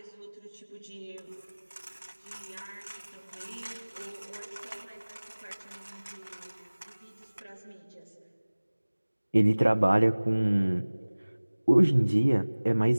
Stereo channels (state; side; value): inverted; both; correlation -1.00